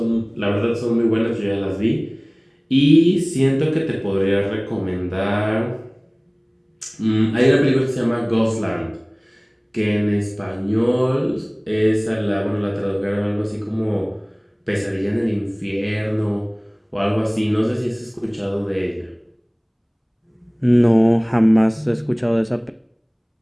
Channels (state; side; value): identical; both; correlation 1.00